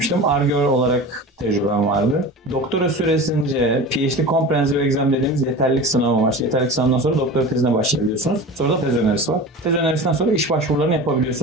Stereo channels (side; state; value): both; normal; correlation 0.33